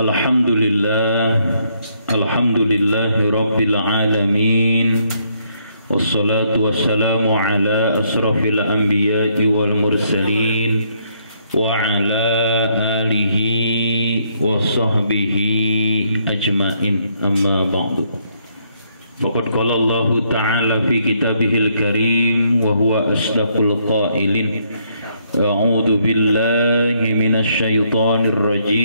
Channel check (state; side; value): inverted; both; correlation -0.72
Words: Alhamdulillahi rabbil alamin. Wassalatu wassalamu ala asrafil anbiya'i wal mursalin wa ala alihi wa sahbihi ajma'in, amma ba'du. Faqad qala Allah ta'ala fi kitabihil karim wa huwa asdaqul qailin. A'udzu billahi minasy syaithanir